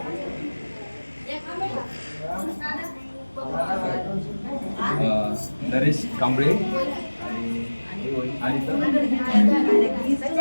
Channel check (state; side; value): inverted; both; correlation -1.00